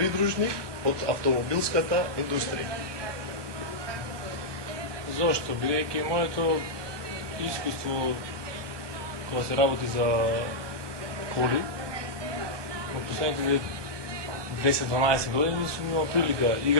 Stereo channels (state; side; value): late; left; 1.2 ms